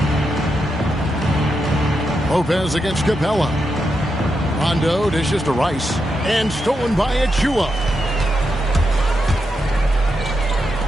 Lopez against Capella. Rondo dishes to Rice. And stolen by Achua.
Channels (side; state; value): both; normal; correlation 0.85